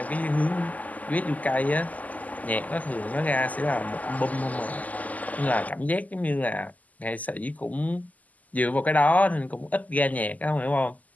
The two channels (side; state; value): right; late; 0.077 ms